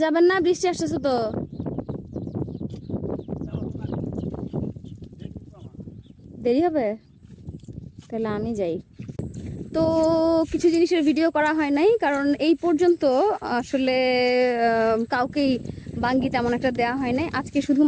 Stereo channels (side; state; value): both; identical; correlation 1.00